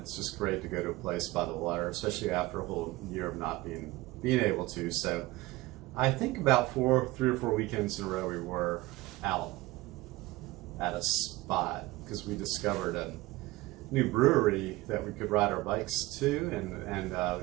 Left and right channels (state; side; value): quieter; left; 19.5 dB